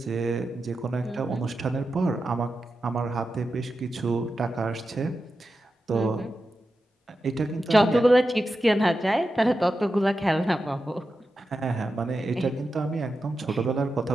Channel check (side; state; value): both; normal; correlation 0.90